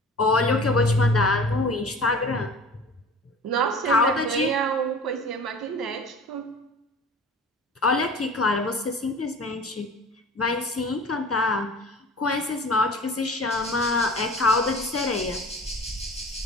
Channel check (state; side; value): normal; both; correlation 0.41